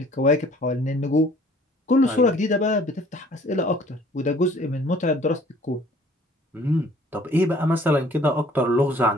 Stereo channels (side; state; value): both; normal; correlation 0.55